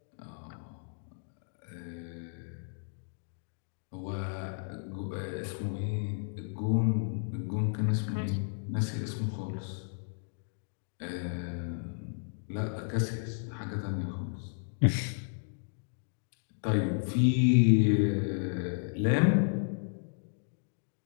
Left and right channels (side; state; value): right; silent; digital silence